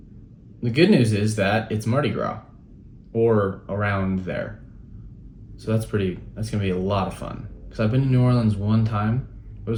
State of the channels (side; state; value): both; identical; correlation 1.00